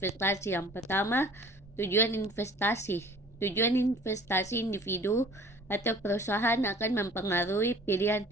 Yang pertama, tujuan investasi. Tujuan investasi individu atau perusahaan akan mempengaruhi pilihan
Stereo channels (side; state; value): both; normal; correlation 0.49